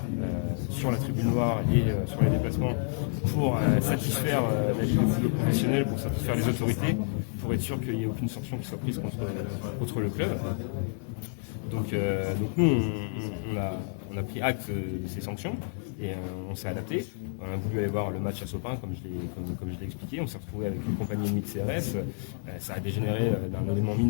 sur la tribune noire et sur les déplacements pour satisfaire la Ligue de football professionnel, pour satisfaire les autorités, pour être sûr qu'il n'y ait aucune sanction qui soit prise contre le club. Donc nous, on a pris acte de ces sanctions et on s'est adapté. On a voulu aller voir le match à Sopin, comme je l'ai expliqué. On s'est retrouvé avec une compagnie ennemie de CRS. Ça a dégénéré d'un élément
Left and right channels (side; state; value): right; silent; 58 dB below the other